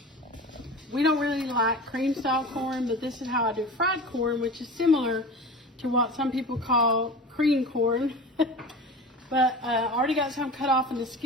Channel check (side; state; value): both; normal; correlation 0.33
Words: We don't really like cream style corn, but this is how I do fried corn, which is similar to what some people call cream corn. But I already got some cut off in the